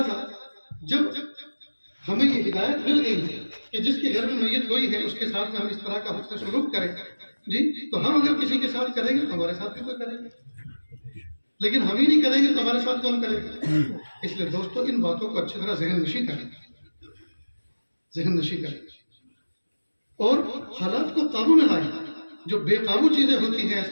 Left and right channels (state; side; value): inverted; both; correlation -1.00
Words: جب ہمیں یہ ہدایت مل گئی ہے کہ جس کے گھر میں میت ہوئی ہے اس کے ساتھ میں ہم اس طرح کا حسن سلوک کریں جی، تو ہم اگر کسی کے ساتھ کریں گے تو ہمارے ساتھ بھی کوئی کرے گا، لیکن ہم ہی نہیں کریں گے تو ہمارے ساتھ کون کرے گا؟ اس لیے دوستو ان باتوں کو اچھی طرح ذہن نشی کریں اور حالات کو قابو میں لائیں۔ جو بے قابو چیزیں ہوتی ہیں